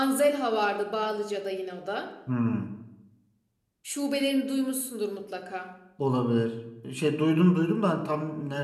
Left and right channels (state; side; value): identical; both; correlation 1.00